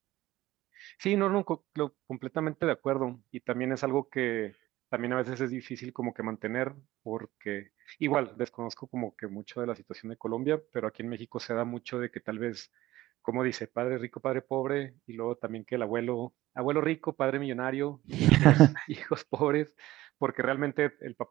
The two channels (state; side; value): quieter; left; 16.6 dB